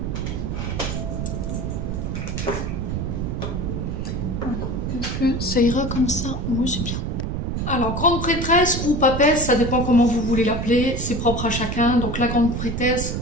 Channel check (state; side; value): noise; right; rumble, 2 dB below the sound